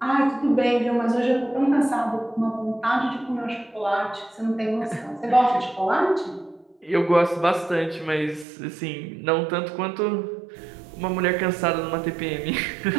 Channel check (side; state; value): left; drops out; at 8.5 s